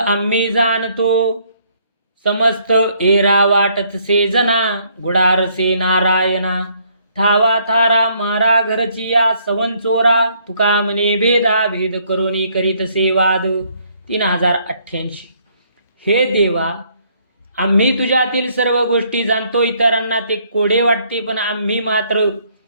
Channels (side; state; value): both; inverted; correlation -0.67